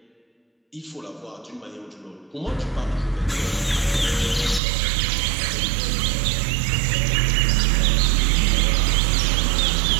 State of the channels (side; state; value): left; drops out; at 4.6 s